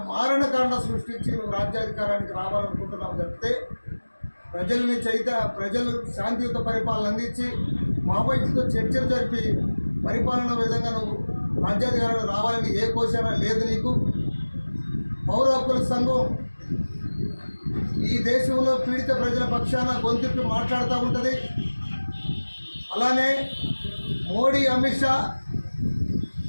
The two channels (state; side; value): inverted; both; correlation -1.00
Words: మారణకాండ సృష్టించి నువ్వు రాజ్యాధికారానికి రావాలనుకుంటున్నావు తప్పితే ప్రజలు శాంతియుత పరిపాలన అందించి మావోయిస్టుతో చర్చలు జరిపి పరిపాలన విధంగా నువ్వు రాజ్యాధికారానికి రావాలని ఏ కోశాన లేదు నీకు. పౌర హక్కుల సంఘం ఈ దేశంలో పీడిత ప్రజల పక్షాన గొంతుకి మాట్లాడుతూ ఉంటుంది. అలానే మోడీ, అమిత్ షా